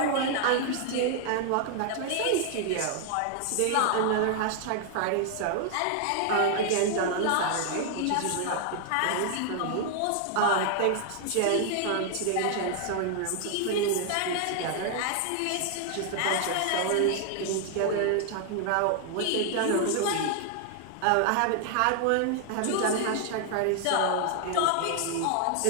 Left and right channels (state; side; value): different; both; correlation 0.00